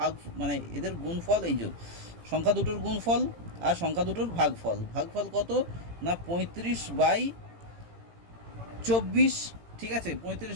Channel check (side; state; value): left; late; 18 ms